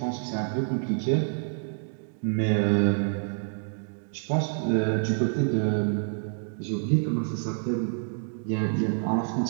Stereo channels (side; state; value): left; silent; 60 dB below the other